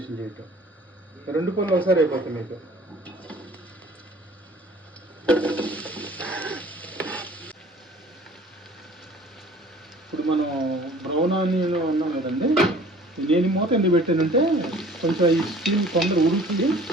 చేయటం, రెండు పనులు ఒకసారి అయిపోతాయి మీకు. ఇప్పుడు మనం బ్రౌన్ ఆనియన్ ఉన్నాం కదండి, నేను మూత ఎందుకు పెట్టానంటే కొంచెం ఈ స్టీమ్ తొందర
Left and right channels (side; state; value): both; normal; correlation 0.50